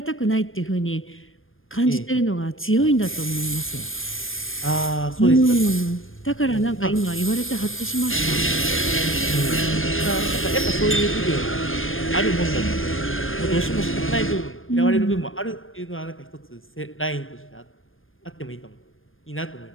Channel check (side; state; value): right; late; 0.59 ms